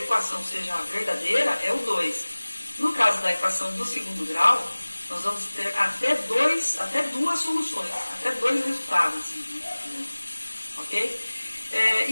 seja verdadeira é o 2. No caso da equação do segundo grau, nós vamos ter até duas soluções, até dois resultados. Ok?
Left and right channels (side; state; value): both; inverted; correlation -1.00